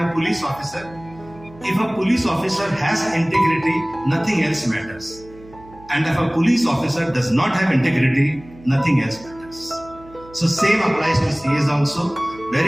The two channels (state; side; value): noise; right; hum, 21 dB below the sound